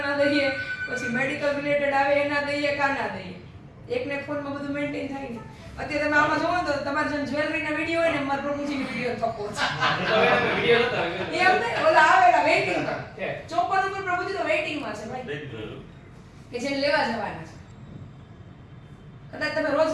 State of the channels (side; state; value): both; identical; correlation 1.00